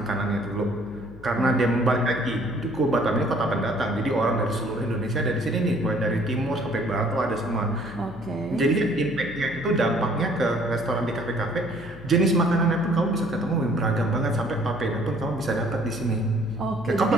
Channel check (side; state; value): left; noise; hum, 18 dB below the sound